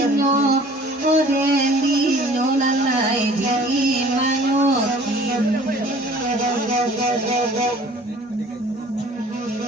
odendino lalai di manyoki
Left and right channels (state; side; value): normal; both; correlation 0.50